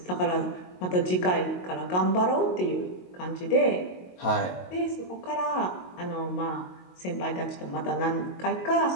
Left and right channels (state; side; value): late; right; 22 ms